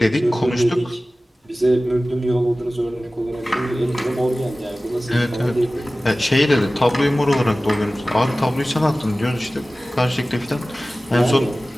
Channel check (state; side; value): normal; both; correlation 0.97